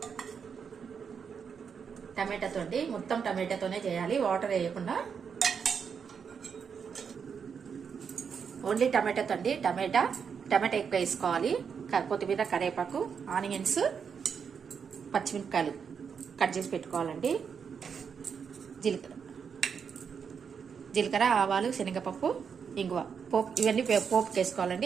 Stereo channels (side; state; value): left; quieter; 6.6 dB